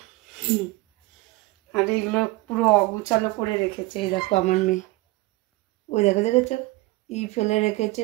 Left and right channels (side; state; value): left; quieter; 21.1 dB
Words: আর এগুলো পুরো অগুচালো করে রেখেছে। এই দেখো আমার মেয়ে, ওই দেখেছো ফেলে রেখেছে,